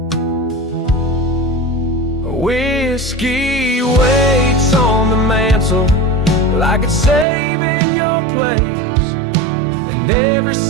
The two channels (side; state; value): left; drops out; at 7.2 s